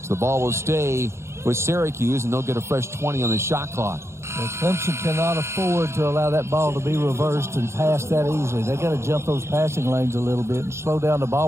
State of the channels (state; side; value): late; left; 0.13 ms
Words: So the ball will stay with Syracuse, and they'll get a fresh 20 on the shot clock. Well, Clemson cannot afford to allow that ball to be reversed and pass that easily. They got to jump those passing lanes a little bit and slow down the